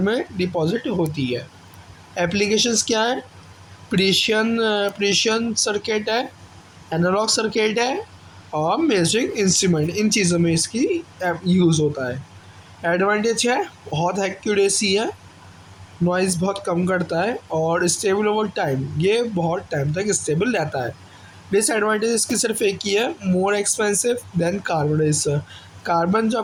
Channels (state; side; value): identical; both; correlation 1.00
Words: में डिपॉजिट होती है। एप्लीकेशंस क्या है? प्रेशियन प्रेशियन सर्किट है, एनालॉग सर्किट है और मेजरिंग इंस्ट्रूमेंट, इन चीज़ों में इसकी यूज़ होता है। एडवांटेज है बहुत एक्यूरेसी है, नॉइज़ बहुत कम करता है और स्टेबल ओवर टाइम, ये बहुत टाइम तक स्टेबल रहता है। डिसएडवांटेज इसकी सिर्फ एक ही है, मोर expensive than carbon register. Carbon जो